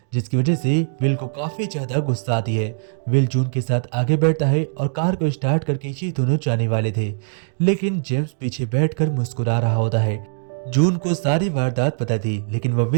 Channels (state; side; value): silent; left; digital silence